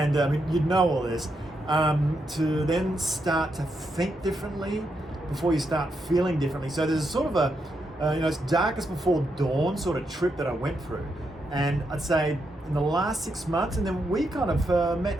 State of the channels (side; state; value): both; normal; correlation 0.82